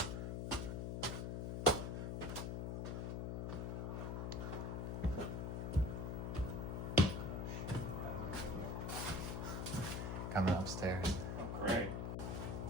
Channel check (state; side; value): noise; left; hum, 2 dB below the sound